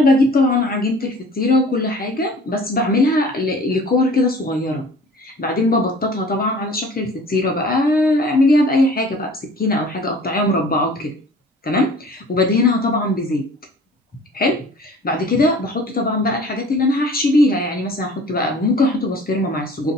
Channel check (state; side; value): normal; both; correlation 0.47